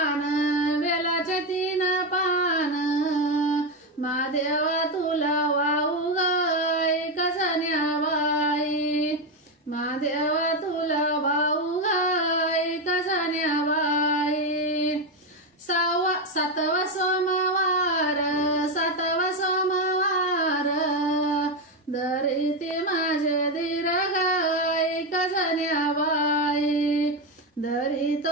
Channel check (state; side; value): normal; both; correlation 0.10